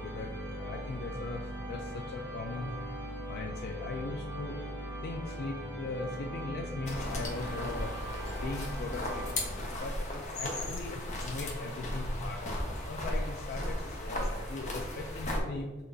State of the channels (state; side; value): normal; both; correlation 0.56